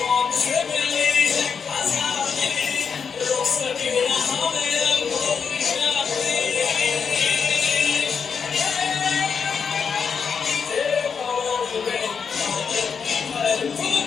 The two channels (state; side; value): quieter; right; 6.2 dB